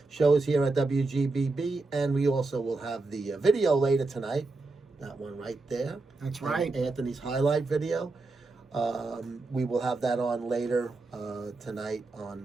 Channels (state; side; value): quieter; left; 3.4 dB